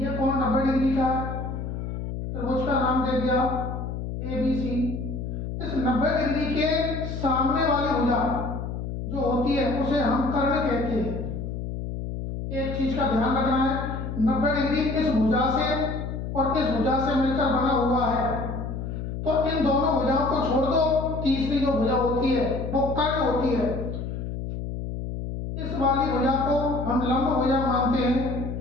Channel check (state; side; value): noise; left; hum, 5 dB below the sound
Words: कोण 90 डिग्री का है, त्रिभुज का नाम दे दिया ABC। इस 90 डिग्री के सामने वाली भुजा जो होती है उसे हम कर्ण कहते हैं। एक चीज का ध्यान रखना है, 90 डिग्री इस भुजा से और इस भुजा से मिलकर बना हुआ है, तो इन दोनों भुजाओं को छोड़ दो, तीसरी जो भुजा होती है वो कर्ण होती है। इस वाली भुजा को हम लंब भुजा मानते हैं